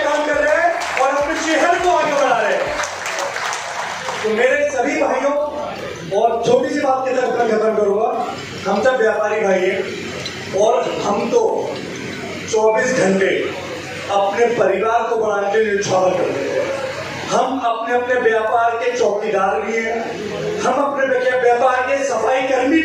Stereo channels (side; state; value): both; identical; correlation 1.00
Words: काम कर रहे हैं और अपने शहर को आगे बढ़ा रहे हैं। तो मेरे सभी भाइयों, और छोटी सी बात के साथ खत्म करूंगा, हम सब व्यापारी भाई हैं और हम तो 24 घंटे अपने परिवार को बढ़ाने के लिए न्यौछावर करते हैं। हम अपने अपने व्यापार के चौकीदार भी हैं, हम अपने व्यापार के सफाई कर्मी